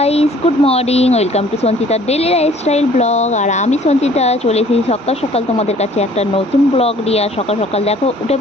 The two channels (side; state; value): both; normal; correlation 0.55